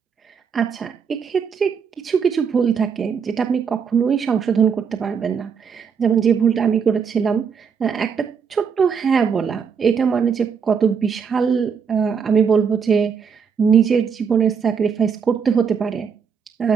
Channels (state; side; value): quieter; left; 6.5 dB